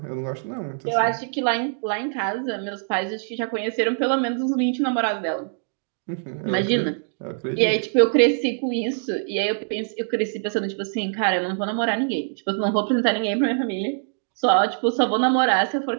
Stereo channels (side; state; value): left; silent; digital silence